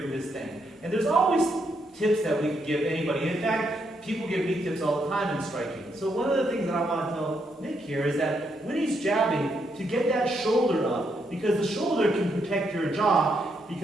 his thing, and there's always tips that we can give anybody. In fact, people give me tips all the time in striking. So one of the things that I want to tell Nick here is that when he's jabbing, to get that shoulder up, because the shoulder can protect your jaw,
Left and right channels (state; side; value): normal; both; correlation 0.77